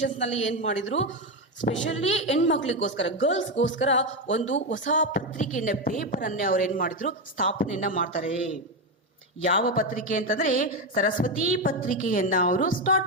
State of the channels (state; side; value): normal; both; correlation 0.10